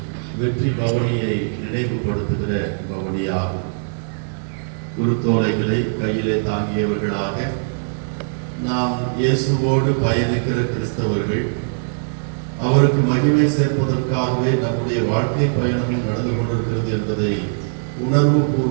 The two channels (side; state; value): left; silent; digital silence